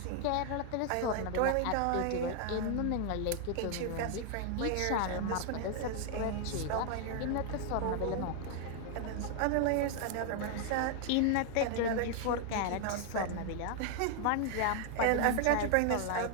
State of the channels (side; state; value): both; different; correlation 0.00